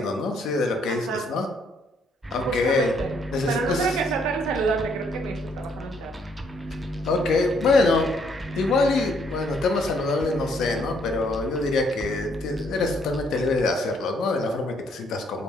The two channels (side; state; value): both; normal; correlation 0.69